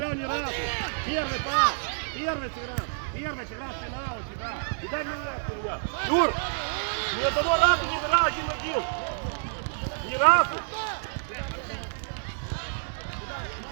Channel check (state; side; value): silent; left; digital silence